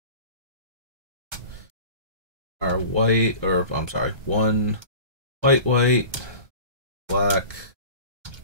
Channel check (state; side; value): late; left; 1.3 ms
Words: Our white, or I'm sorry, 1 white, black,